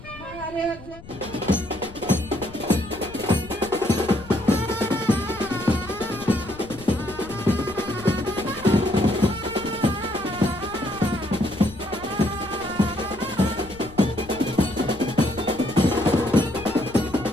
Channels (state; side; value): noise; left; rumble, 17 dB below the sound